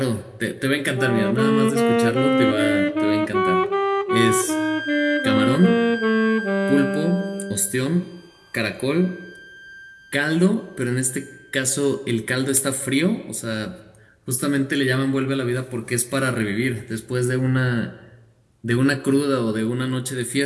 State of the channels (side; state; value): both; identical; correlation 1.00